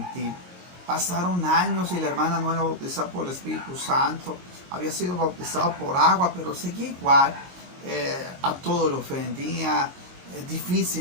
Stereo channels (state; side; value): late; left; 22 ms